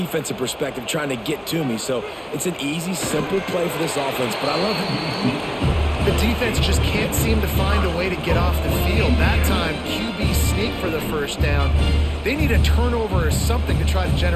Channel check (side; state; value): both; identical; correlation 1.00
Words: perspective trying to get to me. So it's an easy, simple play for this offense, but I love it. The defense just can't seem to find a way to get off the field. That time, QB sneak for the first down. They need a turnover or something to try to